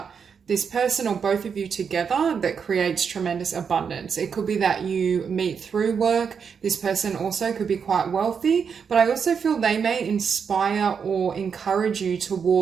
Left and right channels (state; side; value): quieter; left; 6.5 dB